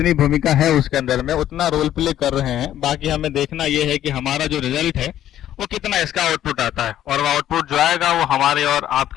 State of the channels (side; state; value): right; quieter; 11.9 dB